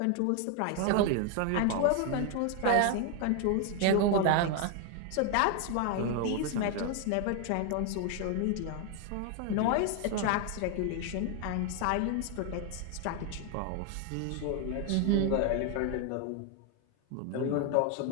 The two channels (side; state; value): both; different; correlation 0.01